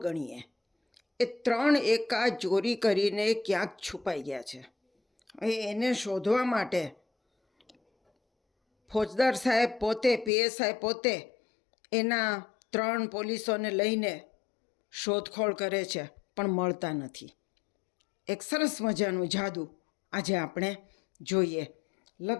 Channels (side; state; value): right; drops out; at 10.3 s